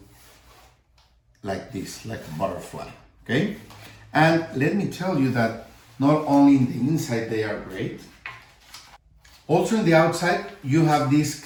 like this, like a butterfly. Okay, and let me tell you that not only in the inside they are great, also in the outside you have this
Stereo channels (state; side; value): identical; both; correlation 1.00